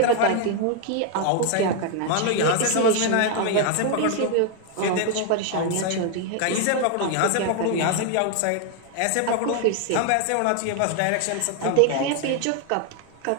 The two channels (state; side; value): different; both; correlation 0.01